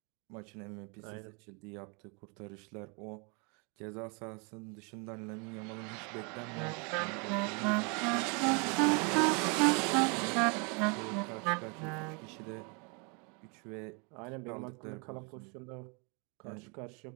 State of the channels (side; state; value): left; quieter; 33.9 dB